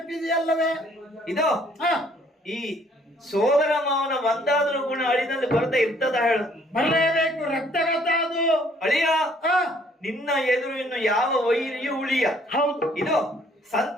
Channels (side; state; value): both; normal; correlation 0.62